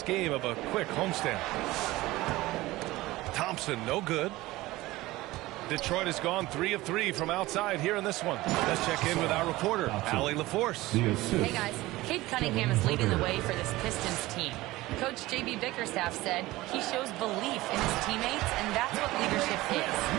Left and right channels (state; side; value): quieter; left; 18.6 dB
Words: game of a quick homestand. Thompson, no good. Detroit has gone 3 of 3 from outside here in this one. Let's check in with our reporter, Allie LaForce. Hey guys, Cade Cunningham is leading the way for this Pistons team. Coach J.B. Bickerstaff said he shows belief in his teammates, and that's what leadership is.